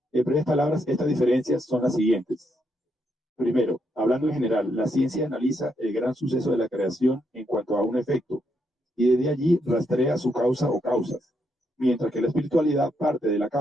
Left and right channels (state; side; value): normal; both; correlation 0.78